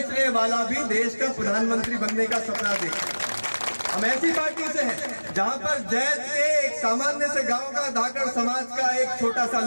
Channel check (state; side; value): inverted; both; correlation -1.00